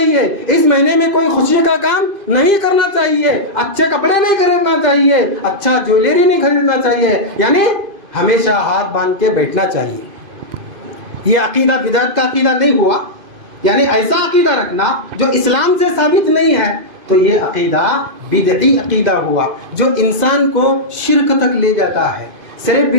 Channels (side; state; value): left; late; 2.5 ms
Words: اس مہینے میں کوئی خوشی کا کام نہیں کرنا چاہیے، اچھے کپڑے نہیں خریدنا چاہیے، اچھا جویلری نہیں خریدنا چاہیے، یعنی ہمیشہ ہاتھ باندھ کے بیٹھنا چاہیے. یہ عقیدہ بدعت کا عقیدہ نہیں ہوا، یعنی ایسا عقیدہ رکھنا جو اسلام سے ثابت نہیں ہے، تو یہ عقیدہ بدعی عقیدہ ہوا جو انسان کو شرک تک لے جاتا ہے. صرف